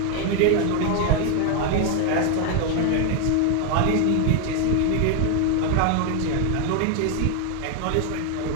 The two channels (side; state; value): both; different; correlation 0.01